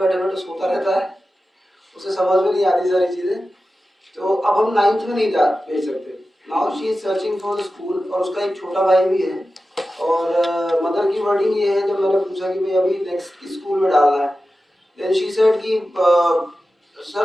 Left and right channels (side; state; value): both; normal; correlation 0.93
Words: बैठे सोता रहता है, उसे समझ में नहीं आती सारी चीज़ें, तो अब हम 9th में नहीं जा भेज सकते. Now she is searching for the school, और उसका एक छोटा भाई भी है. और मदर की वर्डिंग ये है, जब मैंने पूछा कि भाई अभी नेक्स्ट किस स्कूल में डालना है, देन शी सेड कि